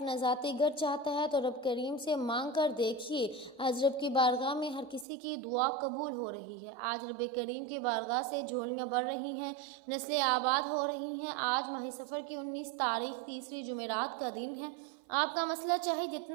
ذاتی گھر چاہتا ہے تو رب کریم سے مانگ کر دیکھیے، آج رب کی بارگاہ میں ہر کسی کی دعا قبول ہو رہی ہے۔ آج رب کریم کی بارگاہ سے جھولیاں بڑھ رہی ہیں، نسلیں آباد ہو رہی ہیں۔ آج ماہ سفر کی 19 تاریخ تیسری جمعرات کا دن ہے۔ آپ کا مسئلہ چاہے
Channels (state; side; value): drops out; left; at 5.1 s